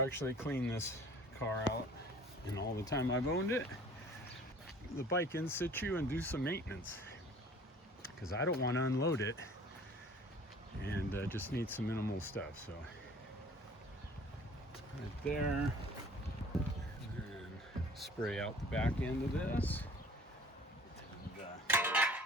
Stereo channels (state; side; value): normal; both; correlation 0.49